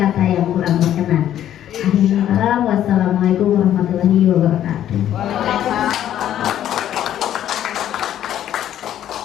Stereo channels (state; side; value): quieter; right; 11.3 dB